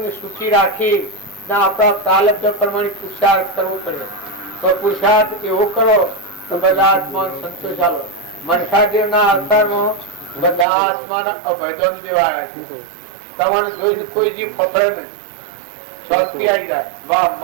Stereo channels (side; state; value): left; drops out; at 10.7 s